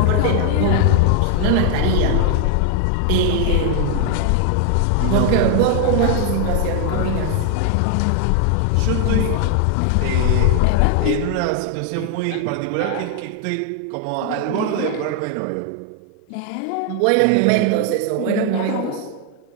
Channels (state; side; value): different; both; correlation 0.00